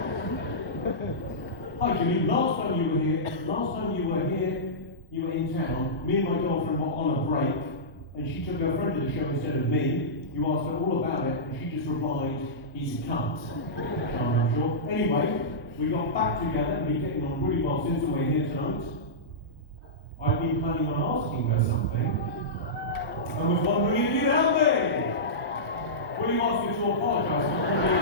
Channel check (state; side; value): normal; both; correlation -0.15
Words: Hi Jimmy, last time you were here, you were in town. Me and my girlfriend were on a break, and she took her friend to the show instead of me. You asked her all about it, and she just replied, he's a cunt. I'm sure. Anyway, we got back together and been getting on really well since we're here tonight. I've been planning on asking her something. I was wondering if you'd help me. Will you ask her to apologise for all the...